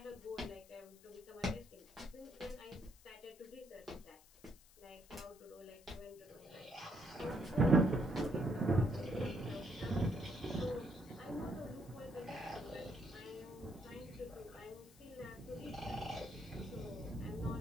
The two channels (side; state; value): left; noise; hiss, 24 dB below the sound